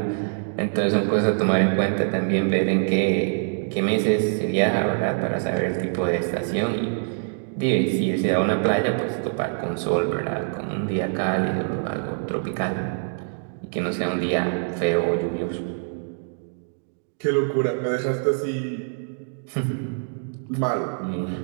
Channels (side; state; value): left; silent; digital silence